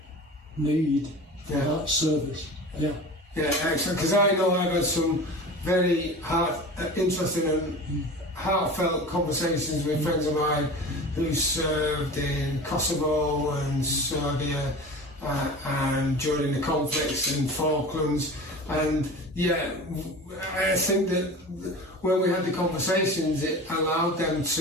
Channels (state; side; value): normal; both; correlation 0.35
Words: need for that service. Yeah, excellent. Because I know I've had some very interesting and heartfelt conversations with friends of mine who served in Kosovo and Serbia and during the conflicts in Falklands. And I think that when we had the conversations, it allowed them